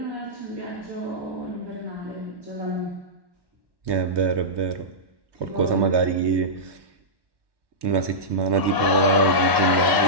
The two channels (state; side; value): late; left; 1.1 ms